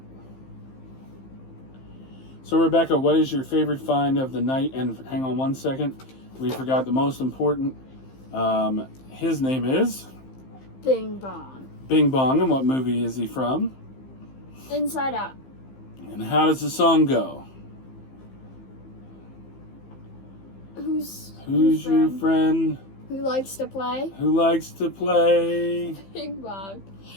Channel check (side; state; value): right; late; 15 ms